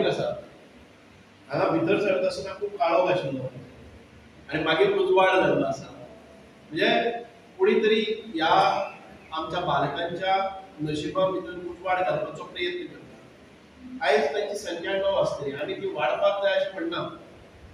आसा, हांगा भितर सरता आसतना खूब काळोख आशिल्लो आनी मागीर उजवाड जाल्लो आसा। म्हणजे कोणी तरी ह्या आमच्या बालकांच्या नशिबा भितर उजवाड घालपाचो प्रयत्न करता। आयज तांची संख्या 9 आसतली, आमी ती वाडपाक जाय अशें म्हणना,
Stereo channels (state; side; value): identical; both; correlation 1.00